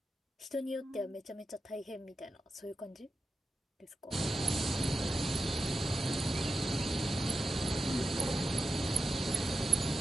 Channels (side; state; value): both; normal; correlation 0.91